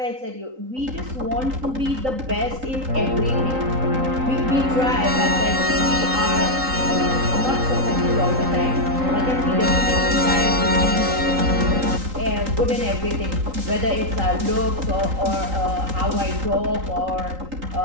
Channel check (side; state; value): left; late; 3.8 ms